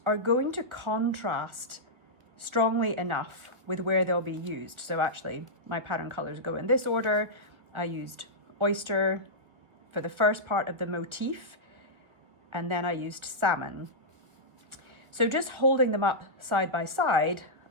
are going to contrast strongly enough with where they'll be used. So actually my pattern colors go in this order. I used oyster for the first part of the motif, and then I used salmon. So just holding them up side by side,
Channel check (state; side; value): late; left; 1.3 ms